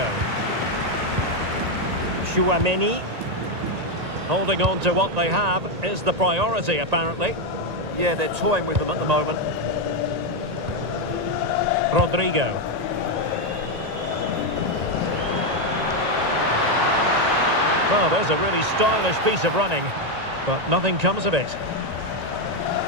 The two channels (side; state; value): left; late; 1.9 ms